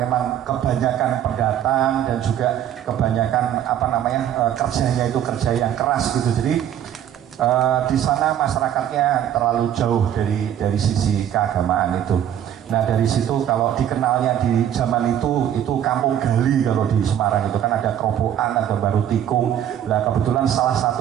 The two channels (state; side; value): quieter; left; 10.4 dB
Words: kebanyakan pendatang dan juga kebanyakan kerjanya itu kerja yang keras gitu. Jadi di sana masyarakatnya terlalu jauh dari sisi keagamaan itu. Nah dari situ kalau dikenalnya di zaman itu kampung gali. Kalau di Semarang itu kan ada Kerobokan, ada Baru Tikung. Nah kebetulan salah